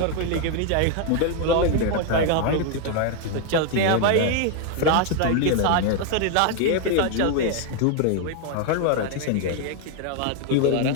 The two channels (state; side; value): different; both; correlation 0.01